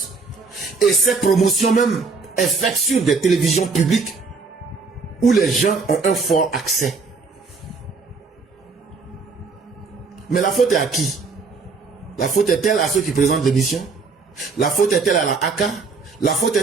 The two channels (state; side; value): quieter; left; 4.5 dB